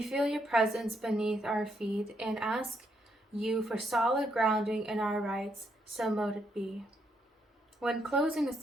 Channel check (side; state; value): both; normal; correlation 0.76